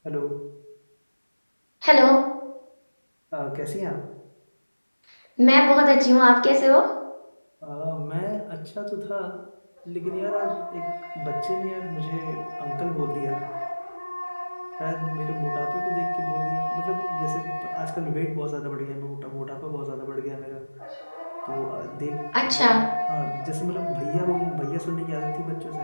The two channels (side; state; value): both; inverted; correlation -1.00